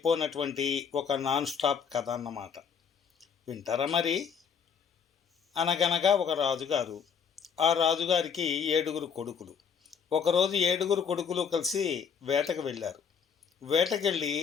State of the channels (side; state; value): right; quieter; 6.7 dB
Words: ఒక నాన్ స్టాప్ కథ అన్నమాట. వింటారా మరి? అనగనగా ఒక రాజుగారు. ఆ రాజుగారికి 7 కొడుకులు. ఒకరోజు 7 కొడుకులు కలిసి వేటకు వెళ్ళారు. వేటకెళ్ళి